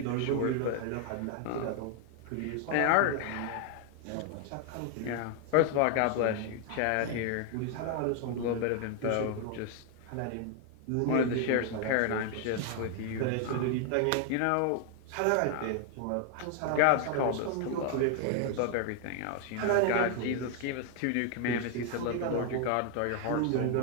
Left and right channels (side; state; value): both; different; correlation 0.00